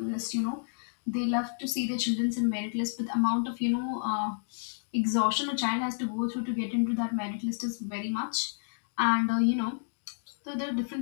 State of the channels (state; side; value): silent; right; digital silence